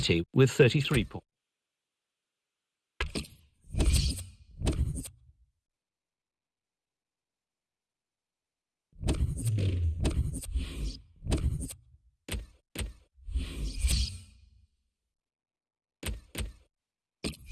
with 33 points.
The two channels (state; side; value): identical; both; correlation 1.00